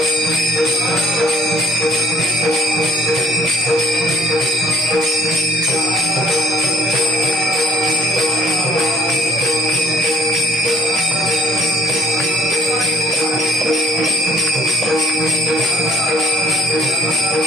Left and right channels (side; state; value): both; normal; correlation 0.57